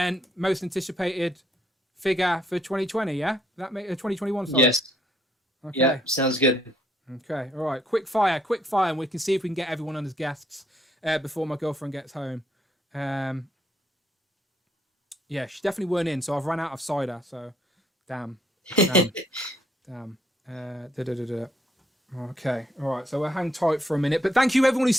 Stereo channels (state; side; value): normal; both; correlation 0.70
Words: most anticipated figure for 2020. Yeah, that make 2021. Sorry. Yes. Okay. Yeah, sounds good. Okay. All right. Quick fire, and we can see if we can get everyone on as guests before my girlfriend gets home. Yeah, she definitely weren't in, so I've run out of cider. So, damn. Okay, all right. So we'll hang tight for a minute, but thank you everyone who's